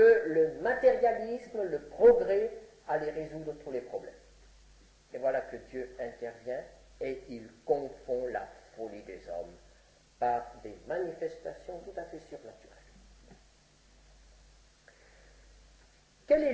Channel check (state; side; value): identical; both; correlation 1.00